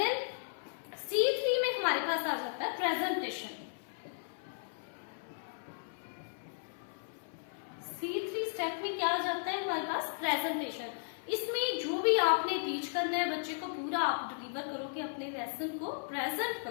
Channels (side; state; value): right; silent; 54 dB below the other